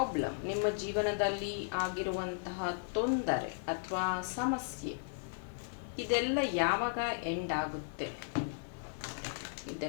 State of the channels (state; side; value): silent; right; digital silence